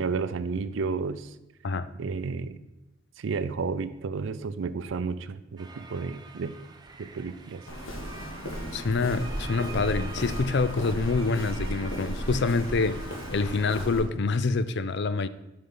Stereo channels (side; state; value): both; normal; correlation 0.42